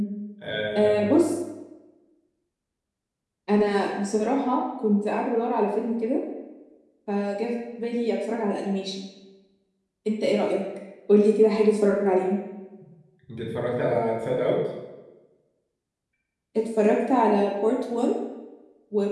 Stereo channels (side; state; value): both; identical; correlation 1.00